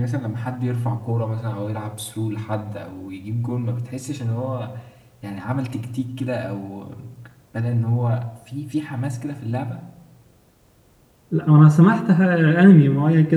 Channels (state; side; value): identical; both; correlation 1.00